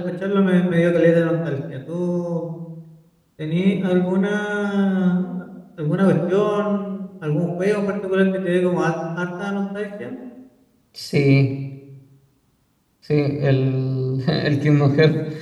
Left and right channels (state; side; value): identical; both; correlation 1.00